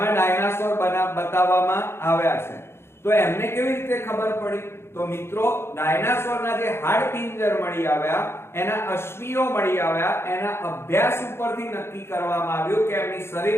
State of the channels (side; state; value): right; late; 0.12 ms